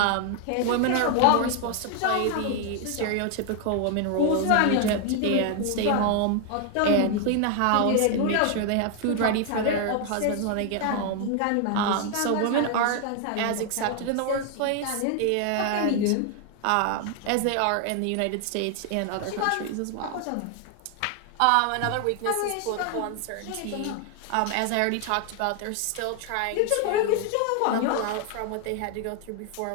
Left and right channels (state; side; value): different; both; correlation 0.00